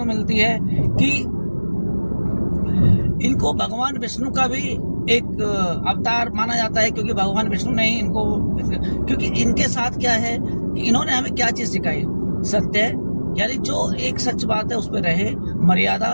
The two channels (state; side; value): inverted; both; correlation -1.00